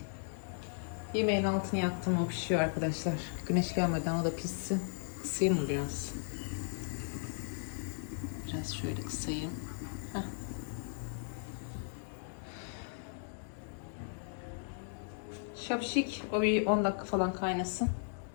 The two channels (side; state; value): right; silent; digital silence